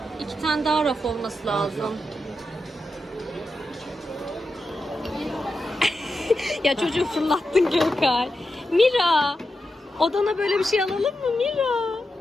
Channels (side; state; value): both; normal; correlation 0.89